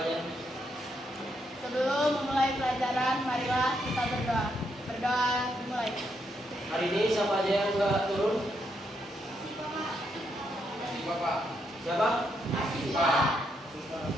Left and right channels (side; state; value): both; normal; correlation 0.78